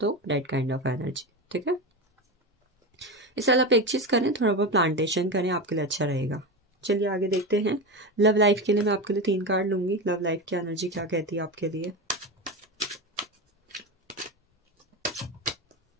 तो दैट काइंड ऑफ एनर्जी, ठीक है। इस साल आप एक चीज़ करें, थोड़ा बहुत प्लांटेशन करें, आपके लिए अच्छा रहेगा। चलिए आगे देखते हैं। लव लाइफ के लिए मैं आपके लिए 3 कार्ड लूंगी। लव लाइफ की एनर्जी क्या कहती है आपके लिए।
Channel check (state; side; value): normal; both; correlation 0.20